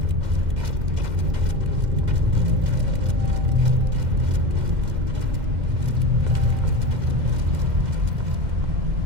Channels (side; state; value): left; late; 2.1 ms